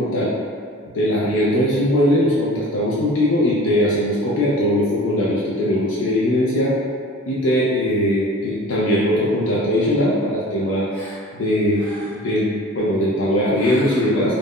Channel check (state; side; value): normal; both; correlation 0.42